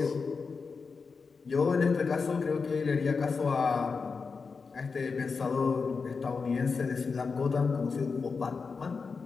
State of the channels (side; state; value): right; quieter; 4.9 dB